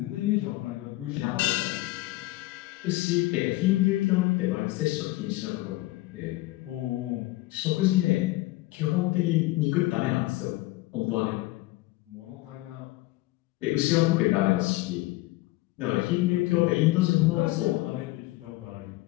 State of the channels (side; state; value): right; quieter; 19.3 dB